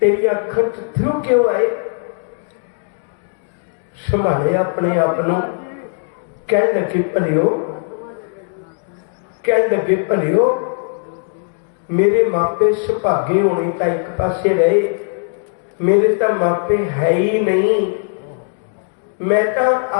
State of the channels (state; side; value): silent; right; 61 dB below the other